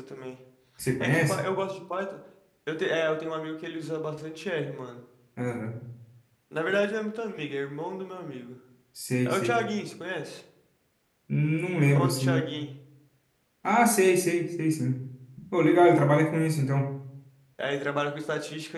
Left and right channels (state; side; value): identical; both; correlation 1.00